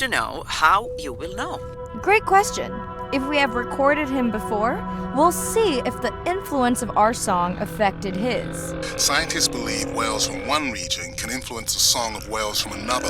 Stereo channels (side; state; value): both; identical; correlation 1.00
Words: know how you will know. Great question. If we have recorded him before, we'll see if the influence of our song affected his. Scientists believe whales from one region can influence the song of whales from another